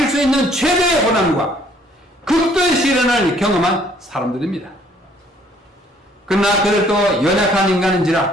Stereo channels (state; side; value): normal; both; correlation 0.61